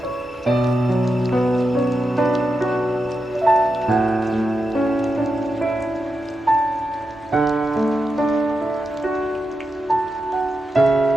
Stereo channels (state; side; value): normal; both; correlation 0.88